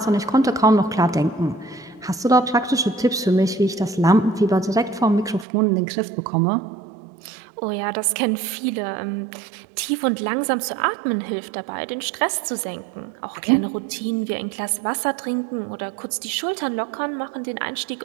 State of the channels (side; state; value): left; drops out; at 5.5 s